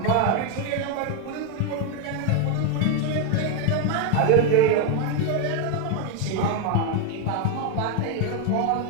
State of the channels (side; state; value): both; different; correlation 0.01